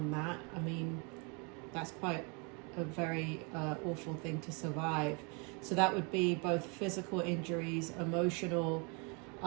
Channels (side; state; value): left; quieter; 33.3 dB